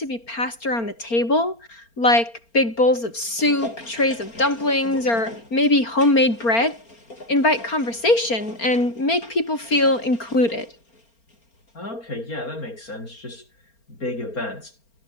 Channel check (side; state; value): right; late; 4.4 ms